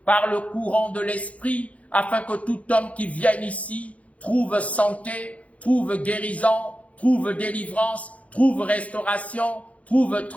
par le courant de l'esprit, afin que tout homme qui vienne ici trouve santé, trouve guérison, trouve délivrance, trouve restauration, trouve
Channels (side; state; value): right; late; 0.066 ms